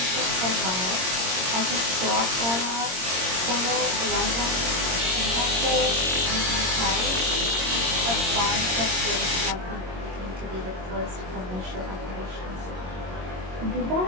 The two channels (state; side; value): late; left; 22 ms